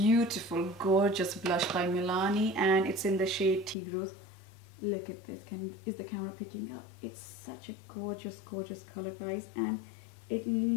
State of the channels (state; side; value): drops out; right; at 3.8 s